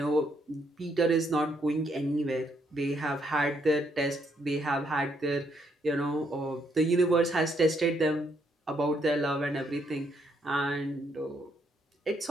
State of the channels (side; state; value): both; normal; correlation 0.73